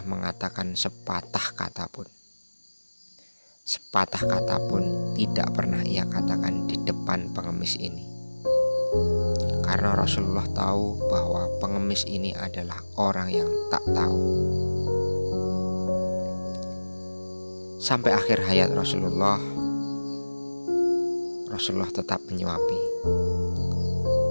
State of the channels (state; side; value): inverted; both; correlation -1.00